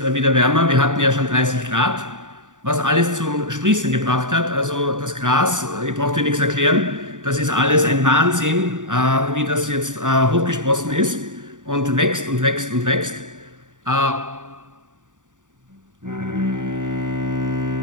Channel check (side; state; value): left; late; 0.87 ms